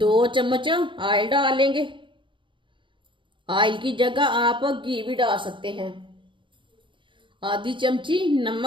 चम्मच ऑयल डालेंगे। ऑयल की जगह आप घी भी डाल सकते हैं। आधी चमची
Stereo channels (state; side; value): late; left; 0.24 ms